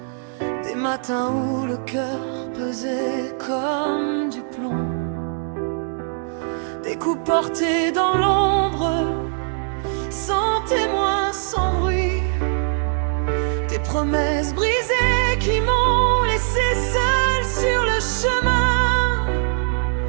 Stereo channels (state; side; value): silent; left; digital silence